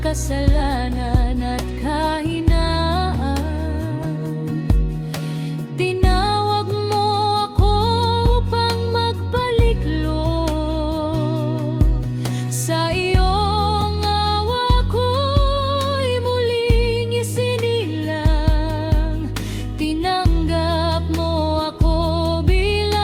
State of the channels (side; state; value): both; identical; correlation 1.00